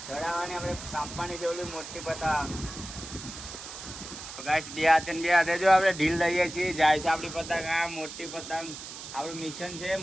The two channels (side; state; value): right; noise; hiss, 11 dB below the sound